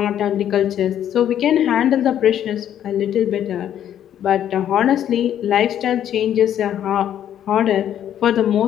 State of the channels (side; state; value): right; quieter; 10.4 dB